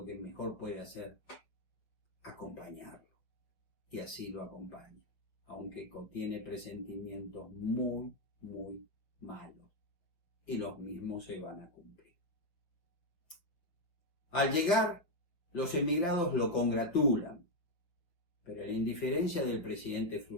que mejor puede hacer? Acompañarlo. Y así lo acompaña, aunque contiene presentimientos muy, muy malos. Y los mismos se van a cumplir. Al llegar, los emigrados lo congratulan, Pero la indiferencia del presidente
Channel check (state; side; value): late; right; 6.2 ms